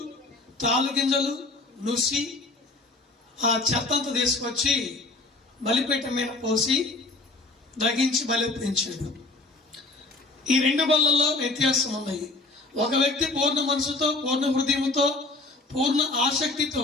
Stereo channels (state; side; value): quieter; right; 3.2 dB